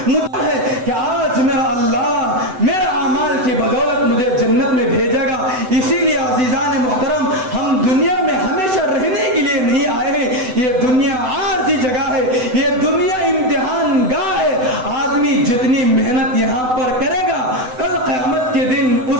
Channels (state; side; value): late; left; 7.9 ms